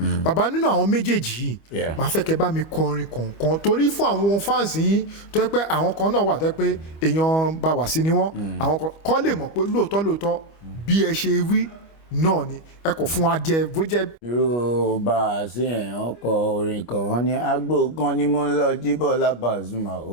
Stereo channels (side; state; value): right; late; 25 ms